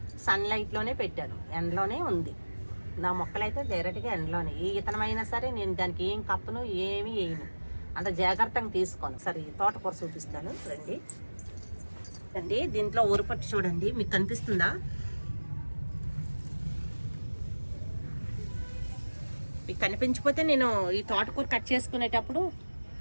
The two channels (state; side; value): inverted; both; correlation -1.00